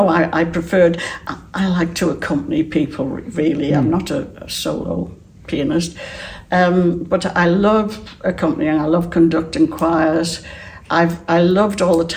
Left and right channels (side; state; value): both; identical; correlation 1.00